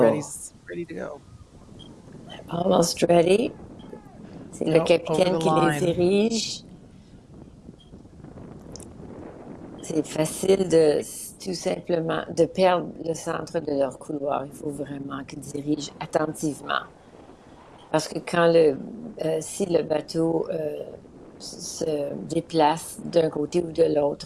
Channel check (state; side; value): identical; both; correlation 1.00